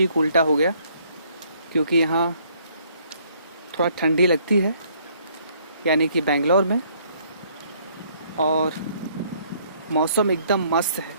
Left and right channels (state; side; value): inverted; both; correlation -0.64